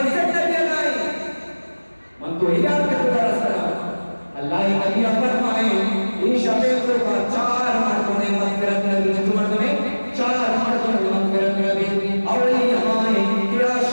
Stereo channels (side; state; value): both; inverted; correlation -1.00